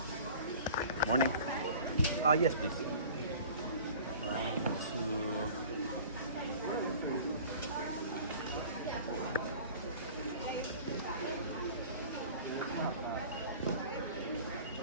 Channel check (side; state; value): both; inverted; correlation -0.44